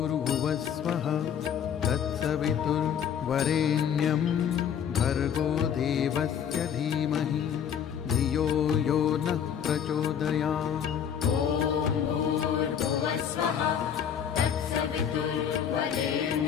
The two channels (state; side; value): quieter; right; 8.4 dB